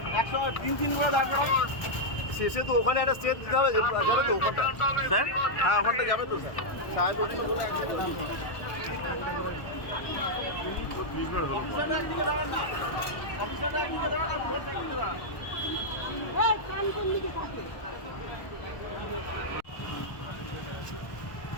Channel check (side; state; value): right; late; 1.1 ms